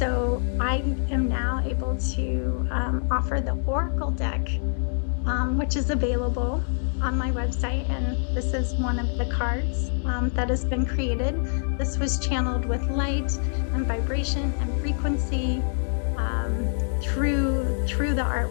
I am now able to offer the oracle deck, which is available on my website. And this is one of the cards that has been created. This was channeled with light and vibration and frequency through the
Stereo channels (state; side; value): silent; right; digital silence